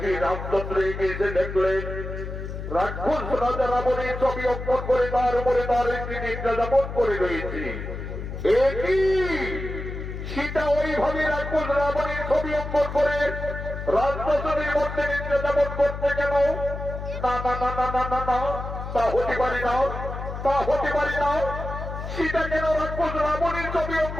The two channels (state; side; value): noise; left; hum, 7 dB below the sound